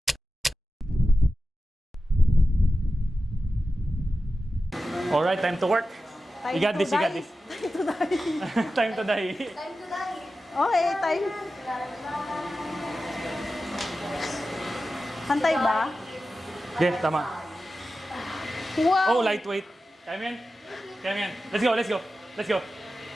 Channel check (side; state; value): both; normal; correlation 0.93